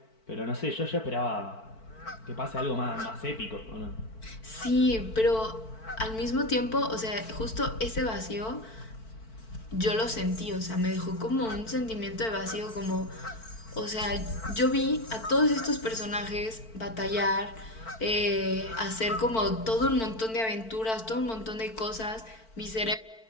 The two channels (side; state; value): right; late; 4.5 ms